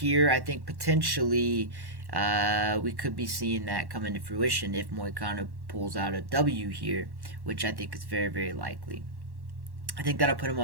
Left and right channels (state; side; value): late; left; 1.1 ms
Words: I think potentially we could be seeing that come into fruition if Moicano pulls out a W here, which I think is very, very likely. I think that'll put him